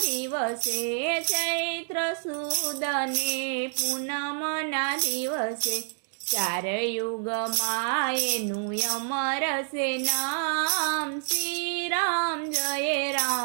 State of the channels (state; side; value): silent; left; digital silence